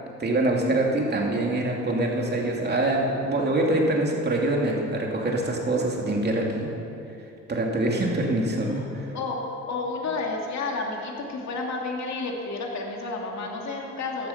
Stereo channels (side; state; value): both; normal; correlation 0.33